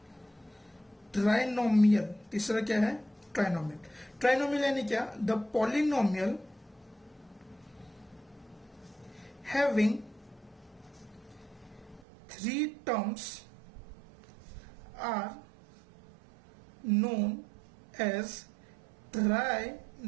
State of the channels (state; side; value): drops out; left; at 12.0 s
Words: ट्राइनोमियल. तीसरा क्या है? ट्राइनोमियल. ट्राइनोमियल यानी क्या? The polynomial having three terms are known as